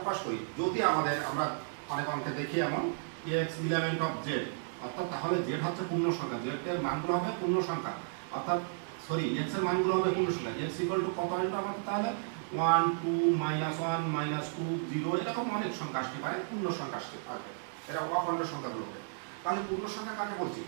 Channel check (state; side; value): silent; left; digital silence